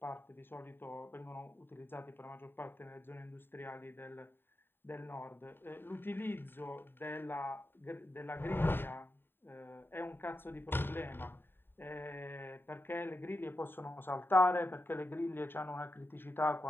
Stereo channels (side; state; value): right; late; 0.10 ms